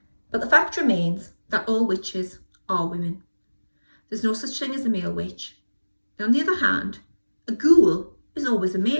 But the fact remains that all witches are women. There's no such thing as a male witch. And on the other hand, a ghoul is always a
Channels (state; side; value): inverted; both; correlation -1.00